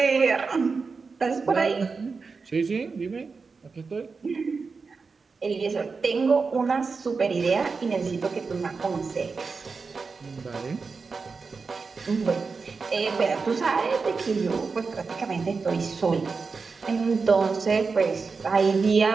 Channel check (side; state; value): left; quieter; 4.7 dB